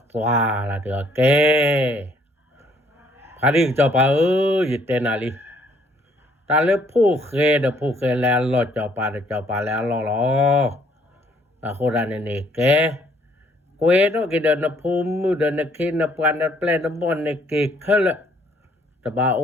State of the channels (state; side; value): normal; both; correlation 0.64